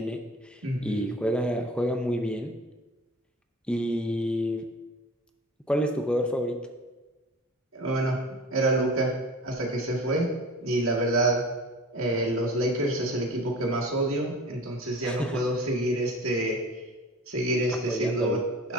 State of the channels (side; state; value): both; normal; correlation 0.40